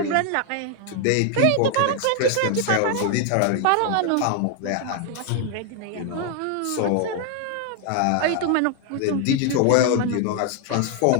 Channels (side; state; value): both; different; correlation 0.00